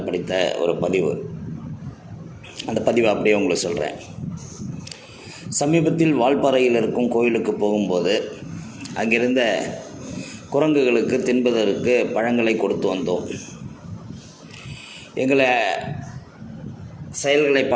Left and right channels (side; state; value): both; identical; correlation 1.00